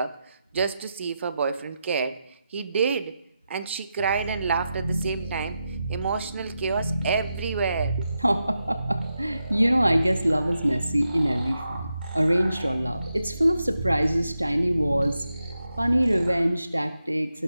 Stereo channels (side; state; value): both; inverted; correlation -0.88